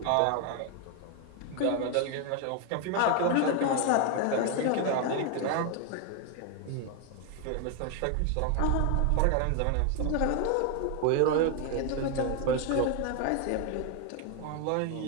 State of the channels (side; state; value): both; different; correlation 0.01